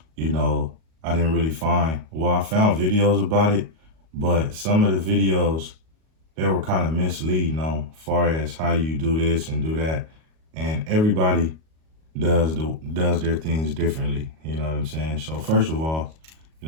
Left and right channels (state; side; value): late; left; 38 ms